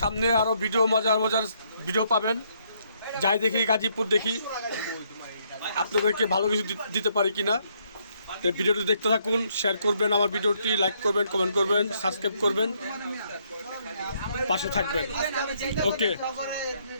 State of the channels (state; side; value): inverted; both; correlation -0.71